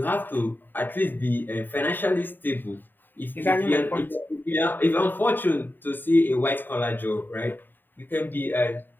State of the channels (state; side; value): late; right; 0.092 ms